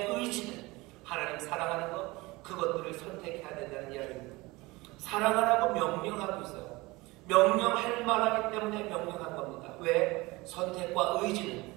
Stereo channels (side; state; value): left; quieter; 22.3 dB